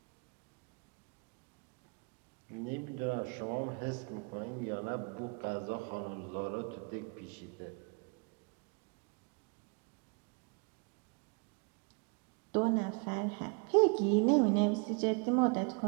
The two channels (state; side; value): quieter; left; 33.8 dB